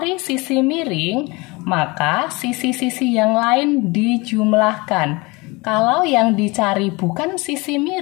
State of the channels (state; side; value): quieter; right; 25.1 dB